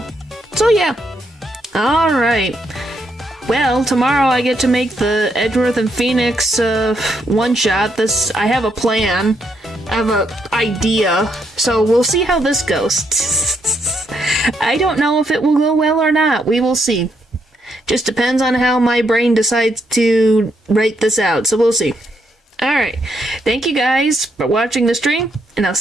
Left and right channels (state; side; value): normal; both; correlation 0.77